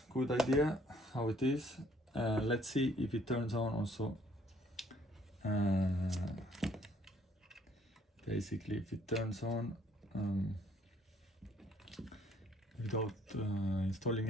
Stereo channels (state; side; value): normal; both; correlation 0.63